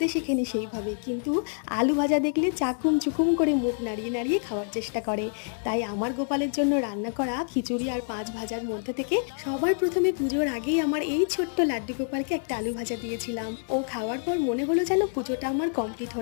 শেখেনি সেইভাবে, কিন্তু আলু ভাজা দেখলে চাকুম চুকুম করে মুখ নাড়িয়ে নাড়িয়ে খাওয়ার চেষ্টা করে। তাই আমার গোপালের জন্য রান্না করা খিচুড়ি আর পাঁচ ভাজার মধ্যে থেকে সবার প্রথমে পুজোর আগেই আমার এই ছোট্ট লাড্ডু গোপালকে একটা আলু ভাজা দিয়েছিলাম। ও খাওয়ার পর মনে হলো যেন পুজোটা আমার কমপ্লিট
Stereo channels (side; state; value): right; silent; 60 dB below the other